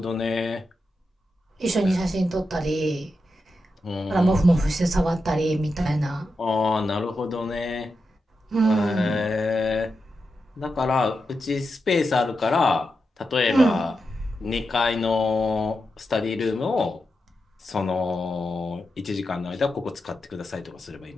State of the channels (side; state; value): both; normal; correlation 0.88